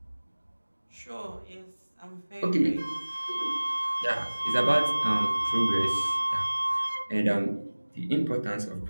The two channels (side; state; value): both; inverted; correlation -1.00